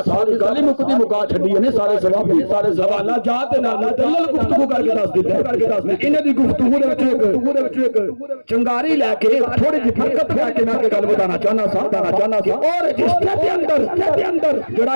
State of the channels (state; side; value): inverted; both; correlation -1.00